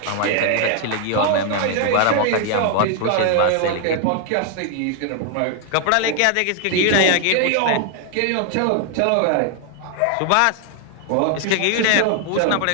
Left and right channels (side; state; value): both; different; correlation 0.00